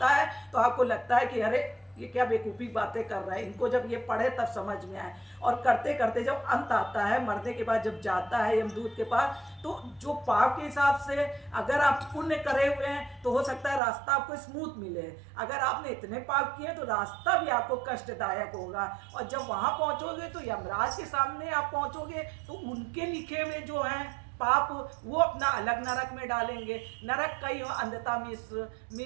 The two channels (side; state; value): left; drops out; at 13.8 s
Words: है तो आपको लगता है कि अरे ये क्या बेवकूफ़ी बातें कर रहा है, इनको जब ये पढ़े तब समझ में आए। और करते करते जब अंत आता है, मरने के बाद जब जाता है यमदूत के पास, तो जो पाप के हिसाब से अगर आप पुण्य करे हुए हैं तो हो सकता है रास्ता आपको स्मूथ मिले, अगर आपने इतने पाप किए तो रास्ता भी आपको कष्टदायक होगा। और जब वहाँ पहुँचोगे तो यमराज के सामने आप पहुँचोगे तो उनके लिखे हुए जो हैं पाप वो अपना अलग नरक में डालेंगे। नरक कई हो, अंधता